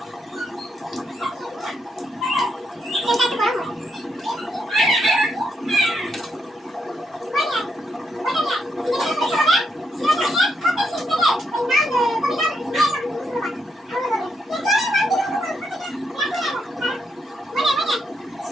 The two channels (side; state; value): both; normal; correlation 0.79